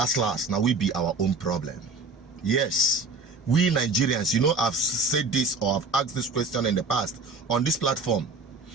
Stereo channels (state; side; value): quieter; left; 3.8 dB